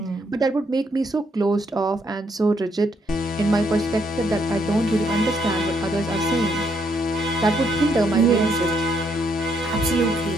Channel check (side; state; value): both; normal; correlation 0.73